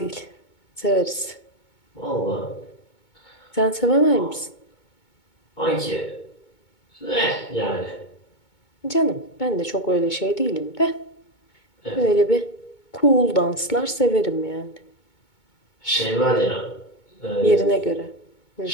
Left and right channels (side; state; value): right; late; 2.2 ms